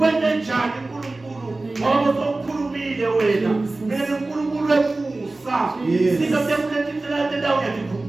njani uNkulunkulu ngoba uzokhulumile wena mina uNkulunkulu weMusa sika temletindlela tendawo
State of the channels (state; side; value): quieter; left; 3.1 dB